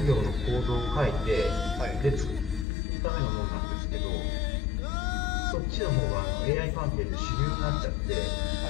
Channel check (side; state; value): right; drops out; at 2.7 s